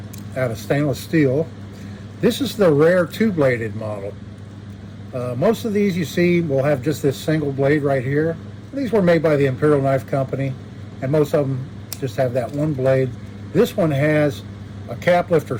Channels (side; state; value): both; identical; correlation 1.00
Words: out of stainless steel. This is the rare two-bladed model. Most of these you see will have just this single blade right here. These were made by the Imperial Knife Company, and most of them just have that one blade. This one has a cap lifter